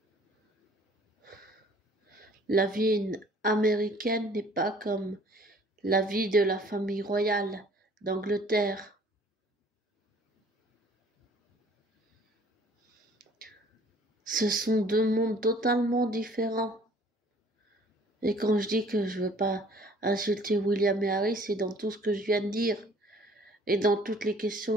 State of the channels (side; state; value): both; normal; correlation 0.54